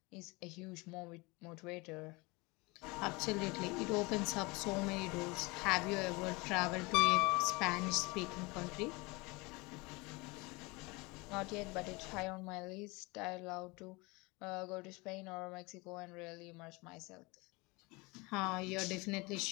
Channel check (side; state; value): right; quieter; 25.4 dB